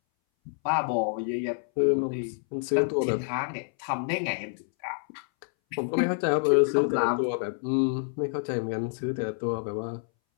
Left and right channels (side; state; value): right; silent; 60 dB below the other